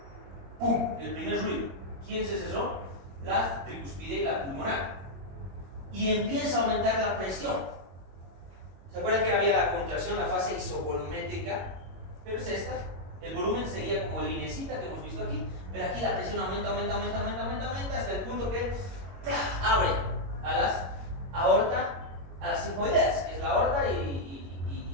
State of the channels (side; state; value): left; late; 21 ms